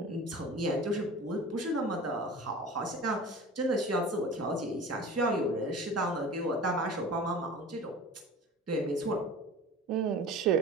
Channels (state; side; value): normal; both; correlation 0.38